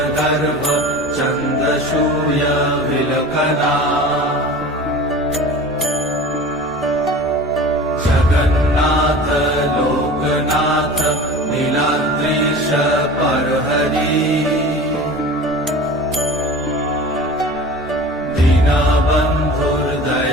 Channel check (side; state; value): both; normal; correlation 0.37